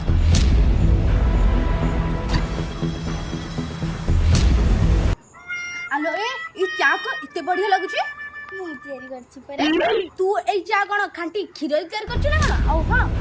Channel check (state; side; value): identical; both; correlation 1.00